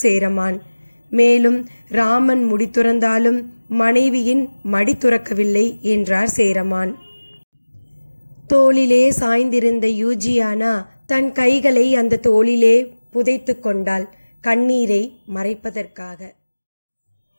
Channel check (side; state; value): both; inverted; correlation -1.00